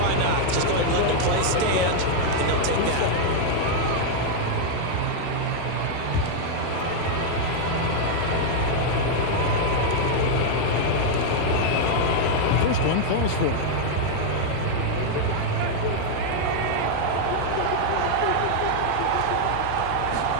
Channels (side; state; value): both; different; correlation 0.00